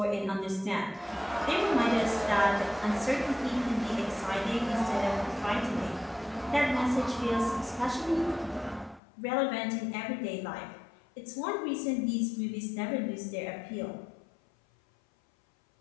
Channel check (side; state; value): right; drops out; at 9.0 s